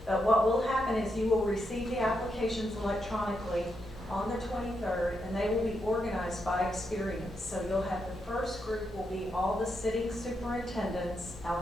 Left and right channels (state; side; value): normal; both; correlation 0.82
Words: But what will happen is you will receive the applications electronically on the 23rd, and they will be organized by experience. So you'll have the first group will be all the sitting superintendents